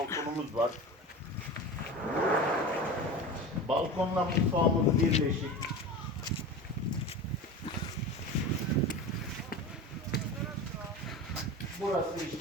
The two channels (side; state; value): both; normal; correlation 0.30